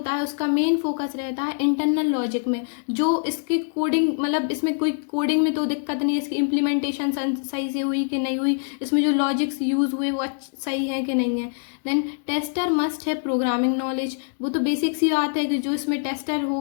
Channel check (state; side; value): silent; right; digital silence